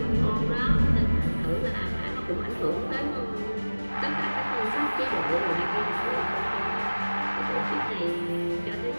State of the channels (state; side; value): inverted; both; correlation -1.00